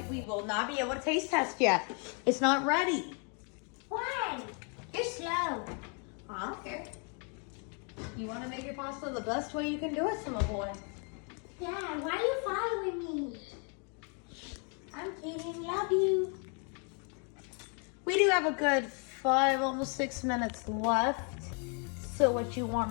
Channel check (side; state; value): right; quieter; 38.4 dB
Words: we will not be able to taste test yet. It's not ready. Why? You're slow. I don't care. You want to make your pasta the best way you can do it, Simba boy. Dad, why are you following me? I'm kidding. Love you. We do have a good 5, almost 6 minutes left. So what you